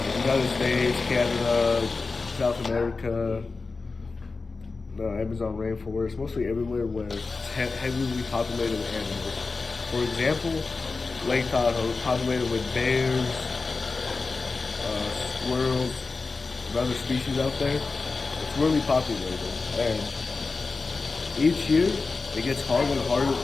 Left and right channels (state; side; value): quieter; right; 4.0 dB